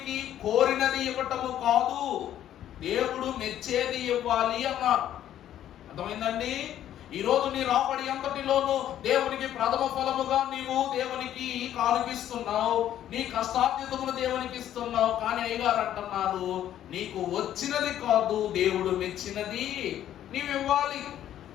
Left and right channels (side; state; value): right; quieter; 11.4 dB